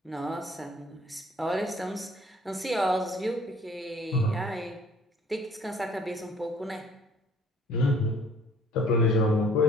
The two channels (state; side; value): normal; both; correlation 0.56